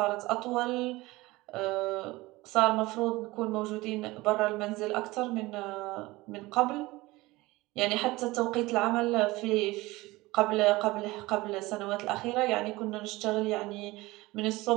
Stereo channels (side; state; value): left; quieter; 20.4 dB